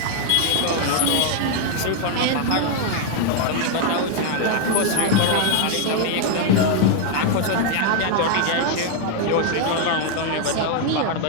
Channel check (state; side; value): different; both; correlation 0.00